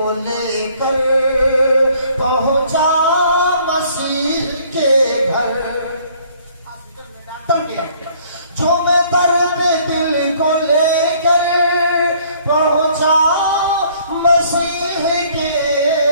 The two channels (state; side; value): inverted; both; correlation -0.60